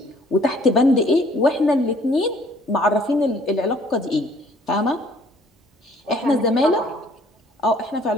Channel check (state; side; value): normal; both; correlation 0.58